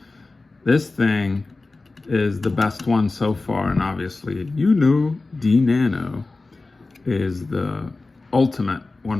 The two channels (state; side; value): quieter; right; 3.4 dB